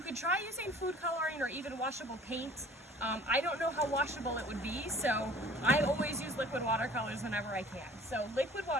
try using food coloring or even washable paint. I don't know how washable it would be, so I always use liquid watercolors whenever I can. So liquid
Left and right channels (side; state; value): both; normal; correlation 0.50